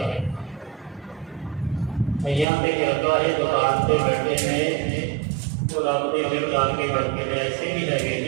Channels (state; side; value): drops out; left; at 2.5 s